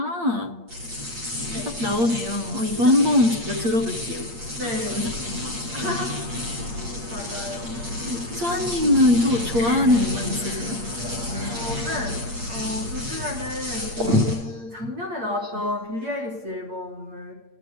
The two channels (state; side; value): late; left; 8.6 ms